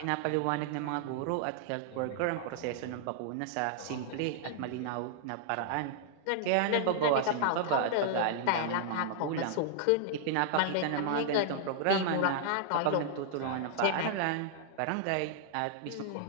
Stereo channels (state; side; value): different; both; correlation -0.01